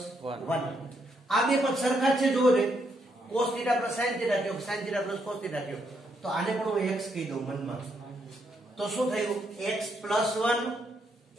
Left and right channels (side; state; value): both; normal; correlation 0.76